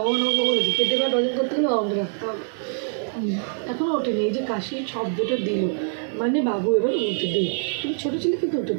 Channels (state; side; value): silent; left; digital silence